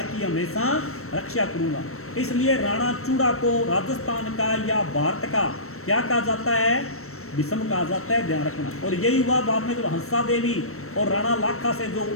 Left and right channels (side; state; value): right; late; 0.63 ms